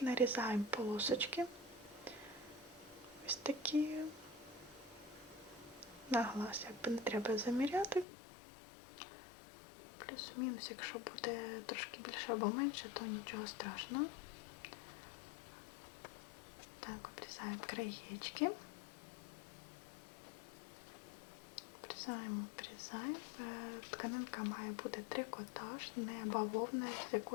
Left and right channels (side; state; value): right; drops out; at 8.1 s